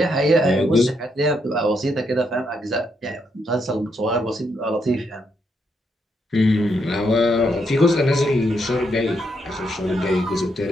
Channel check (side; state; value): both; normal; correlation 0.78